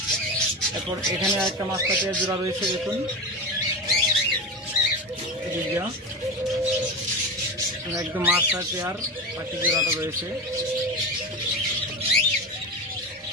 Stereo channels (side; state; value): both; normal; correlation 0.22